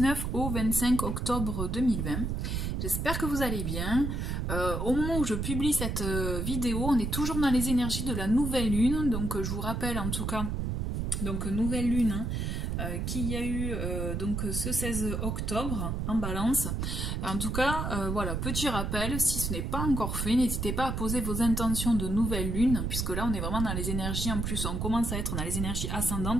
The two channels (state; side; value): noise; right; rumble, 1 dB below the sound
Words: au 25 octobre 2020. J'espère que vous allez bien. Au moment où je publie cette vidéo, on est toujours dans les énergies de la nouvelle lune, donc je vous rappelle en tout cas, donc nouvelle lune, qu'il y a eu donc ce 16 octobre en balance. En tout cas, voilà, petit rappel, si ce n'est pas encore fait, n'hésitez pas à poser vos intentions de nouvelle lune, puisque là on est vraiment dans les énergies, en plus on commence à être dans les énergies